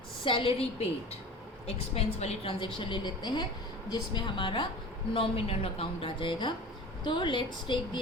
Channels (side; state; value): both; normal; correlation 0.37